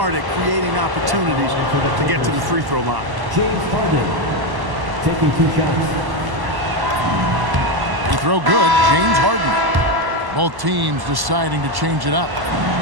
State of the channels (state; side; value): late; left; 1.1 ms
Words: at creating opportunities to get to the free throw line. James Harden taking 2 shots. Free throw good. James Harden. Both teams deciding to change it up.